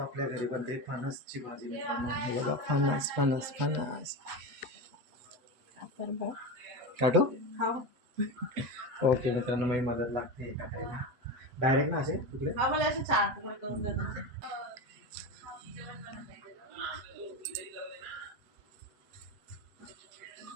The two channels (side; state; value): left; late; 8.0 ms